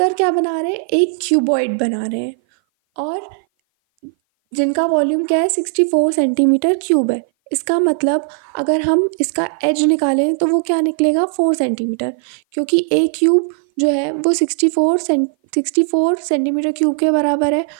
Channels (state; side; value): silent; left; 58 dB below the other